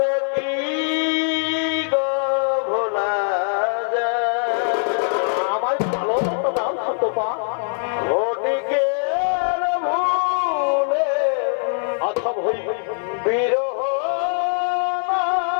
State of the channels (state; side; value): silent; right; 60 dB below the other